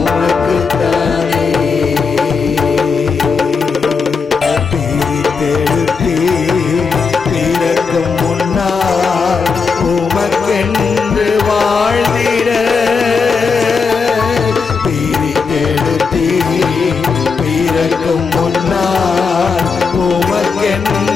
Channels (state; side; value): quieter; right; 5.1 dB